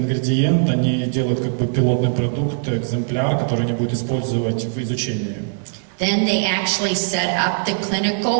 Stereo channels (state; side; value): silent; left; 66 dB below the other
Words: они делают как бы пилотный продукт, экземпляр, который они будут использовать в изучении. Then they actually set up the